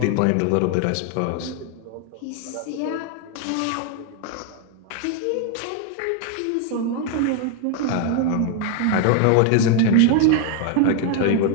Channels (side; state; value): both; different; correlation 0.01